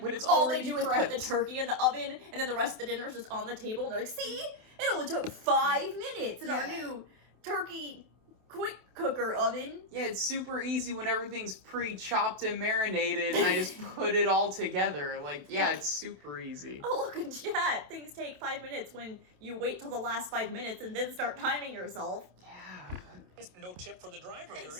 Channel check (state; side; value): late; left; 27 ms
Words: But it's all they already do is put the prepped. turkey in the oven, and then the rest of the dinner is just on the table, and they're like, see? It only took 5 minutes in our Yeah. new turkey quick cooker oven. Yeah, it's super easy when everything's pre-chopped and marinated and I just put it all together. Like, yeah, it's super easy. Oh, look in chat. Things take 5 minutes when you wait till the last 5 minutes and then start timing yourself. Yeah. No tip for the driver here either.